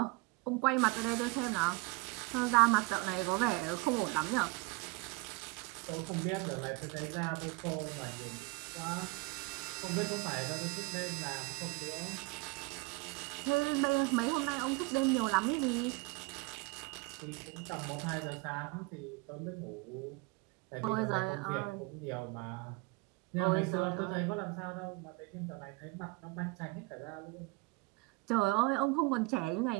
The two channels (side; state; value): left; quieter; 25.3 dB